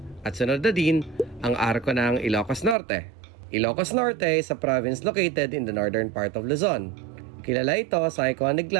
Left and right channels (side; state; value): left; drops out; at 2.8 s